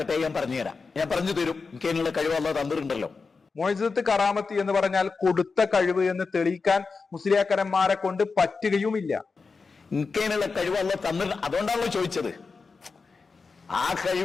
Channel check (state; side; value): quieter; right; 4.6 dB